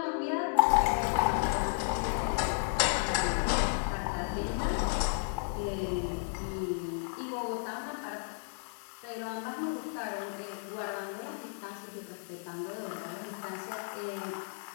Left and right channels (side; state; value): right; silent; digital silence